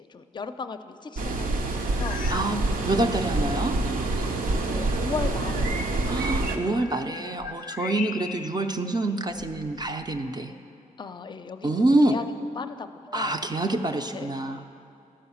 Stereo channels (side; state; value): both; normal; correlation 0.69